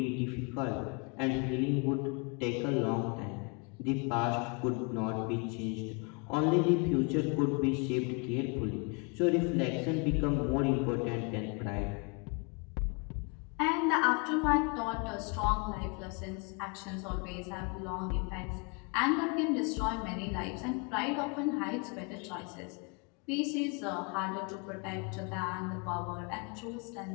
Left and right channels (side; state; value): right; quieter; 33.1 dB